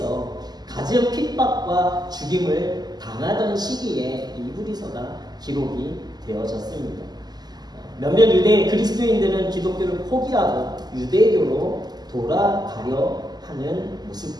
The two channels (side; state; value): left; late; 0.20 ms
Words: 가진 핍박과 죽임을 당하던 시기에 이 히브리서가 기록이 되어졌습니다. 몇몇 유대 그리스도인들은 기독교를 포기하고 유대교로 돌아가려 하는